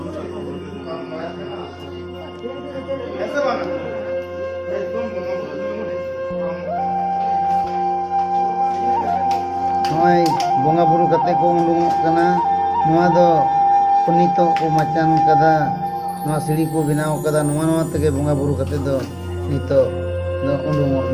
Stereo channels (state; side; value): identical; both; correlation 1.00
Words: नय बोंगा बुरु कते को उंडुंग कना नोआ दो पुनीतो को मचान कदा नोआ सीढ़ी को बनाव कदा नोआ नोआ तके बोंगा बुरु कते दो नितो दो उंडुंग